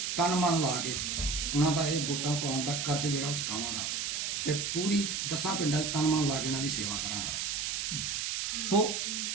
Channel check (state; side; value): noise; right; hiss, 1 dB below the sound